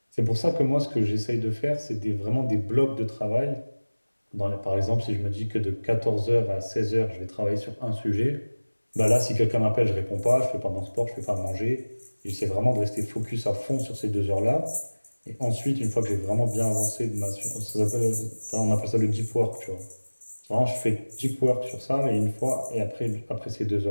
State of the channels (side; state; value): both; inverted; correlation -1.00